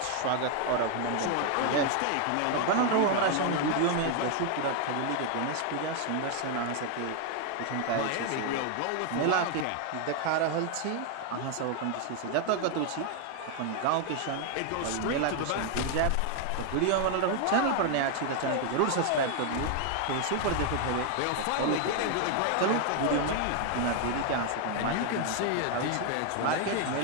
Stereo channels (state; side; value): different; both; correlation 0.00